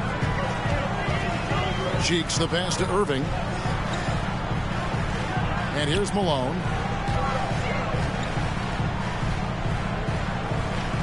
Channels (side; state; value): both; identical; correlation 1.00